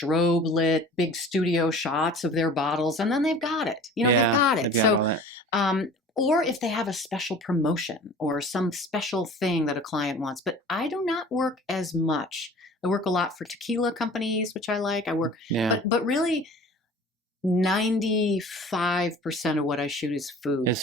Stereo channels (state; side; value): normal; both; correlation 0.44